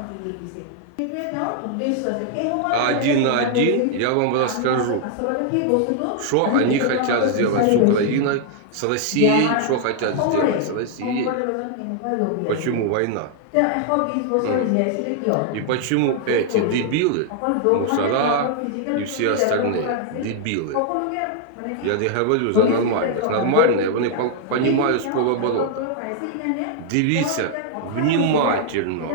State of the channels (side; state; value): both; different; correlation 0.00